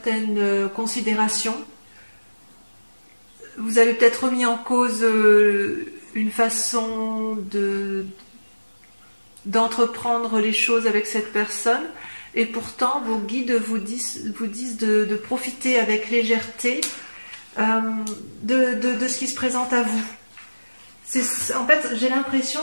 considérations. Vous avez peut-être remis en cause une façon d'entreprendre les choses avec cette personne. Et pourtant, vos guides vous disent de profiter avec légèreté de ce qui se présente à vous. En fait, j'ai l'impression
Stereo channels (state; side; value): inverted; both; correlation -1.00